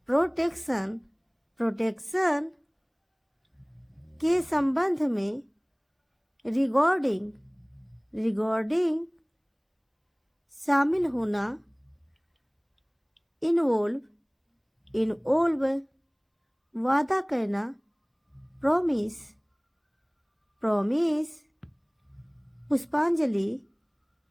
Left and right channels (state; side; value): identical; both; correlation 1.00